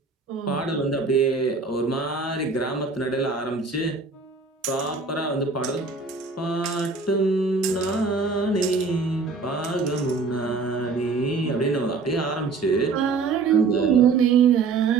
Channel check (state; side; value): quieter; left; 4.4 dB